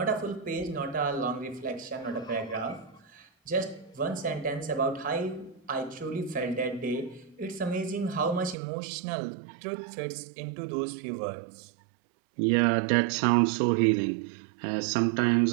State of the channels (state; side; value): drops out; left; at 8.6 s